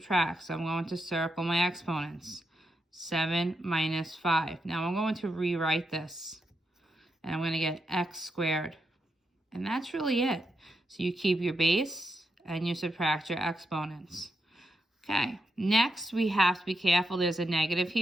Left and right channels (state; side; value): normal; both; correlation 0.84